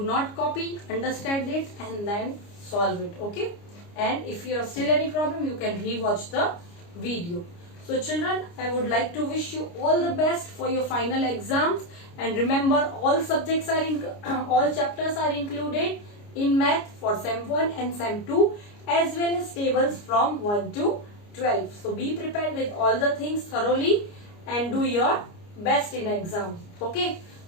not copy, understand it and then solve it. Okay, and if you have still any problem, you can rewatch the video. So children, I would like to wish you all the best for your final exams, and remember all subjects are in all chapters are included in math for sem 1 and sem 2, as well as tables from 1 to 12. So be prepared with all the things thoroughly and do your best in exam. Okay,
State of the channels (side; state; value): right; late; 29 ms